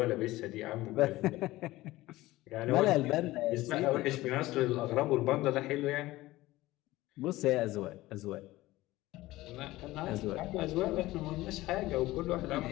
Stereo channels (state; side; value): quieter; right; 17.9 dB